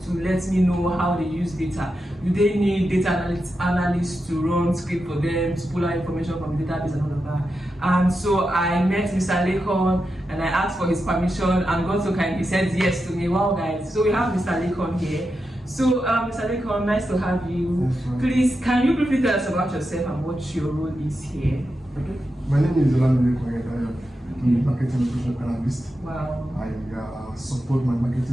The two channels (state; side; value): normal; both; correlation 0.88